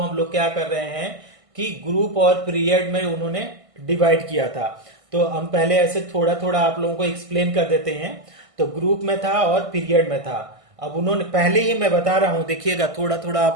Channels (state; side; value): late; left; 1.5 ms